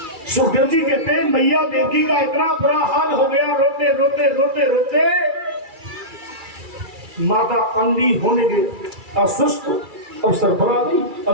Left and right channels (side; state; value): left; late; 2.3 ms